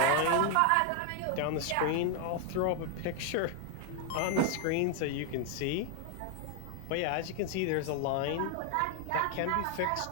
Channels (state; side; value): different; both; correlation 0.00